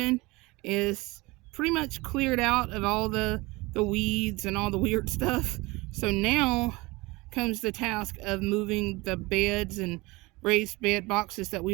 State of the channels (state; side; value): quieter; left; 22.9 dB